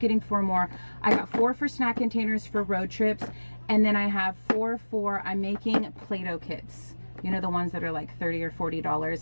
4 more. I got 4 for snack containers for road trips, and then I have 4 for, I'm making Play-Doh kits. You know, the ones that are like $30 or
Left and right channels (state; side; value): inverted; both; correlation -1.00